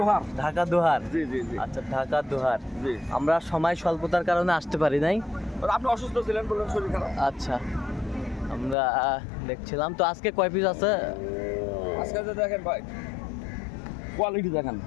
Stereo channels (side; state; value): right; drops out; at 8.8 s